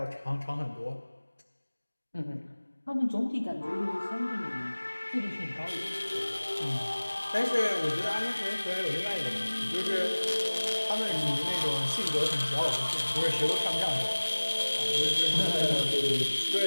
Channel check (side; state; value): both; inverted; correlation -1.00